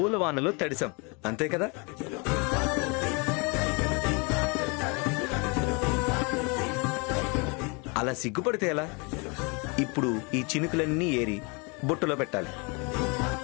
తడిసాం, అంతే కదా? అలా సిగ్గుపడితే ఎలా? ఇప్పుడు ఈ చినుకులన్నీ ఏరి బుట్టలో పెట్టాలి.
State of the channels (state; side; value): quieter; right; 31.1 dB